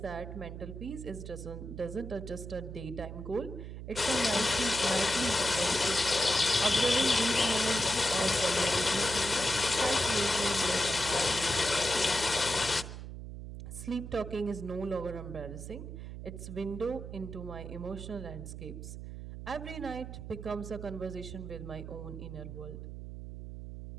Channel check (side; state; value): right; noise; hum, 9 dB below the sound